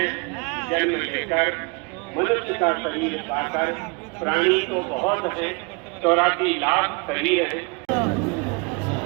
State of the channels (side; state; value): left; quieter; 32.0 dB